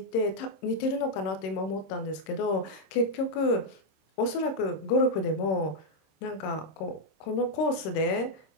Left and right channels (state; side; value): late; right; 26 ms